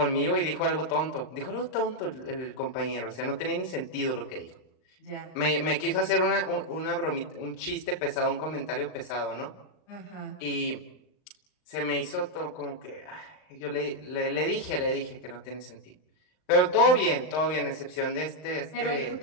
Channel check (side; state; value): right; late; 39 ms